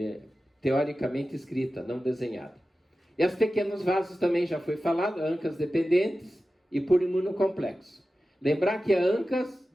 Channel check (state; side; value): normal; both; correlation 0.94